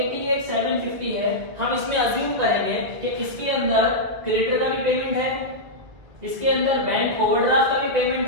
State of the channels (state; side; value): late; left; 2.0 ms